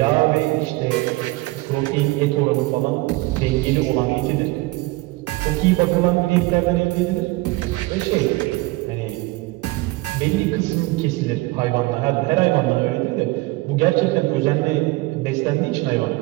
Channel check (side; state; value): left; quieter; 21.5 dB